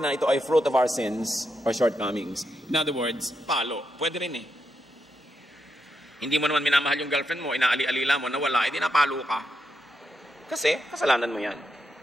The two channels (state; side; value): normal; both; correlation 0.83